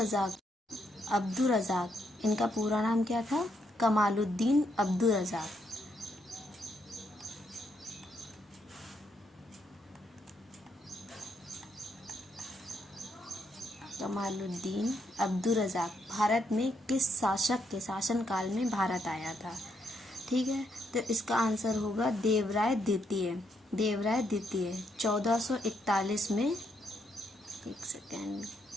रज़ाक इनका पूरा नाम क्या था? कमालुद्दीन अब्दुर रज़ाक। कमालुद्दीन अब्दुर रज़ाक भारत में किस शासक के शासनकाल में भारत आया था? ठीक है, तो इसका आंसर होगा देवराय द्वितीय। 1441 में, एक सेकेंड,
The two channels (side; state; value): both; normal; correlation 0.77